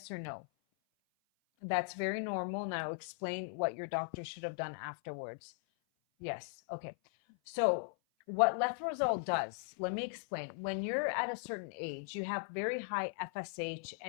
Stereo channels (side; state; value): right; silent; 52 dB below the other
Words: or no? That's very normal. Now explain what your doctor should have done afterwards. Yes. Okay. So what letrozole does, let me explain. When you're at a certain age, you have very high FSH